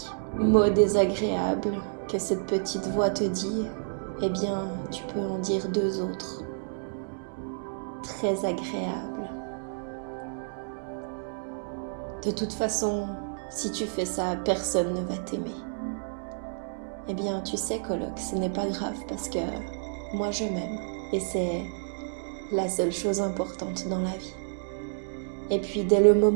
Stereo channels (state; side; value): silent; left; digital silence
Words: mot désagréable que cette petite voix te dit, eh bien tu peux en dire 2 autres, très agréables. De toute façon, si tu fais ça, personne ne va t'aimer. Eh bien, tu sais, coloc, ce n'est pas grave parce que moi je m'aime et c'est la seule chose importante dans la vie. Et puis, dès le